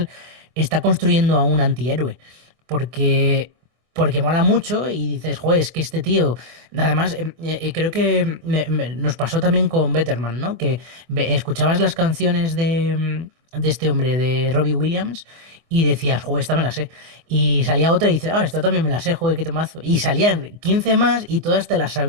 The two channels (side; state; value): left; late; 24 ms